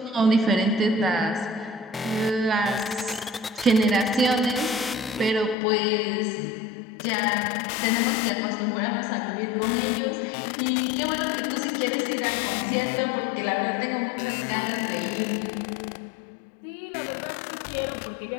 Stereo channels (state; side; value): drops out; right; at 5.6 s